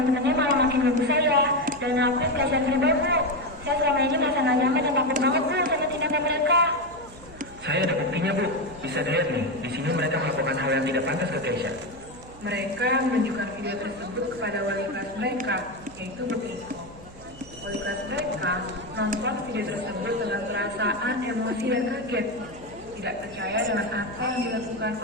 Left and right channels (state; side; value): noise; right; hum, 20 dB below the sound